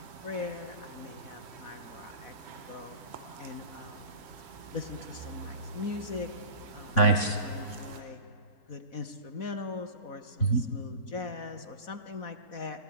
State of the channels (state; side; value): late; right; 3.5 ms